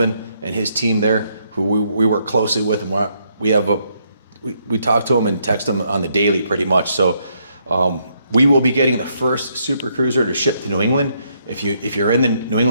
and his team there, who we work closely with, and we talk to them and text them on the daily pretty much. So we will be getting the first Super Cruiser to ship to New England. If you're in the New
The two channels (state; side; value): inverted; both; correlation -0.74